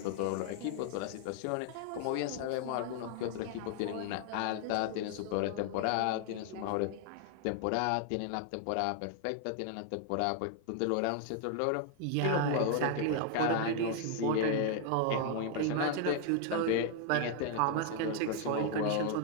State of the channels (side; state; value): both; different; correlation 0.00